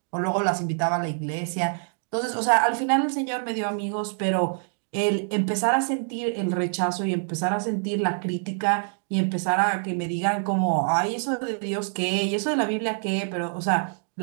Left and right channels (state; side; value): silent; left; digital silence